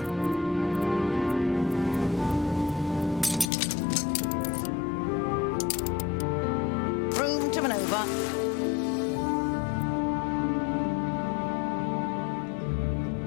Room to maneuver.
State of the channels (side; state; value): right; drops out; at 3.5 s